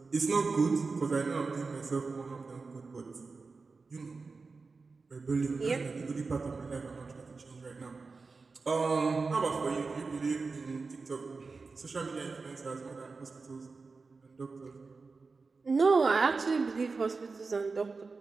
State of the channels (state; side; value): quieter; left; 4.3 dB